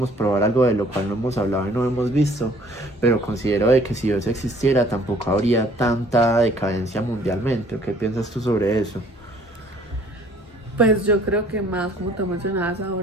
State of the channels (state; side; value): normal; both; correlation 0.57